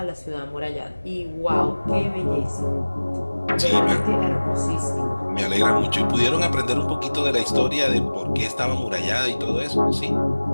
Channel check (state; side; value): inverted; both; correlation -1.00